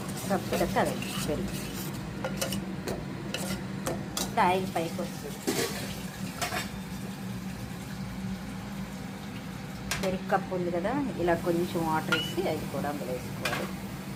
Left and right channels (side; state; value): both; identical; correlation 1.00